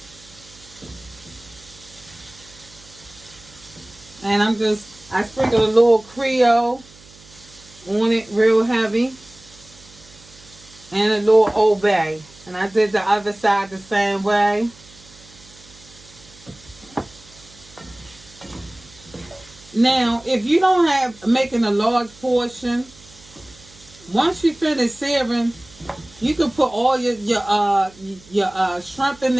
And I sprinkle a little Creole on it real heavy. And a little Old Bay. And I did the other side the same way. Now, if you don't have making a large portion, once you finish searing, you can put all your shrimp in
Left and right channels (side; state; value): right; noise; hum, 24 dB below the sound